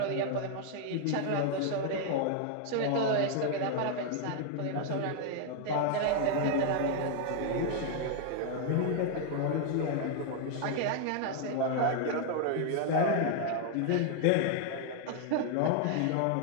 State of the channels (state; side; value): different; both; correlation 0.00